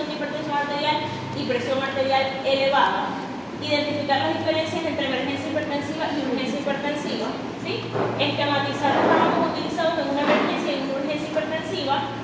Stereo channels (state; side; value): identical; both; correlation 1.00